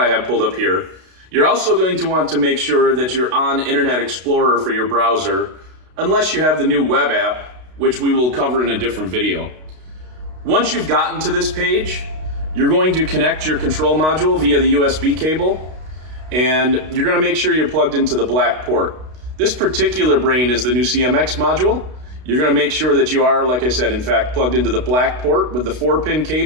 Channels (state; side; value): late; left; 32 ms